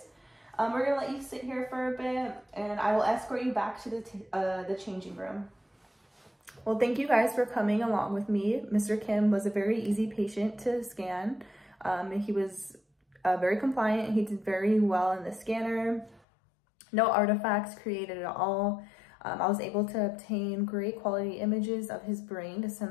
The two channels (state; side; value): drops out; right; at 16.2 s